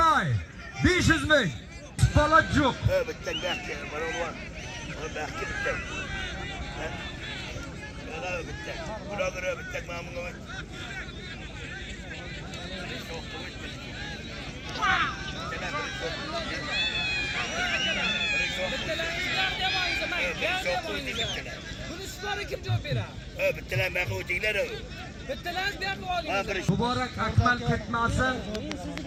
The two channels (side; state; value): both; identical; correlation 1.00